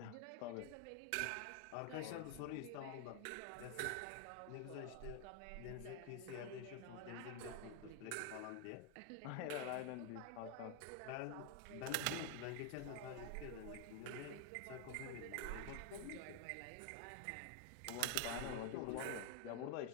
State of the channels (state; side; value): different; both; correlation 0.00